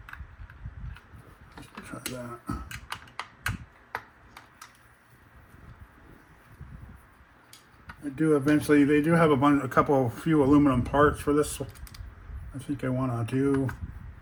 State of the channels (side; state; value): both; identical; correlation 1.00